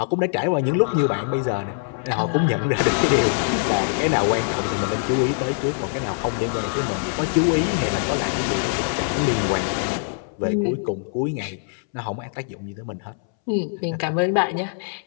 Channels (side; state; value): right; silent; 63 dB below the other